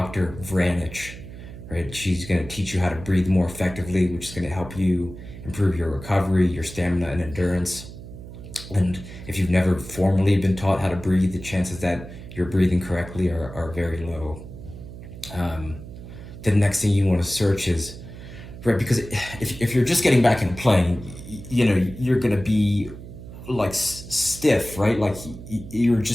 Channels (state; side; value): noise; right; hum, 13 dB below the sound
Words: Vranich. Right, she's going to teach you how to breathe more effectively, which is going to help you improve your recovery, your stamina, and endurance. And if you've never formally been taught how to breathe, the chances that you're breathing correctly are very low. Um, the next thing you want to search is, right, because if you're just getting back into playing, you're going to be like stiff, right? Like you're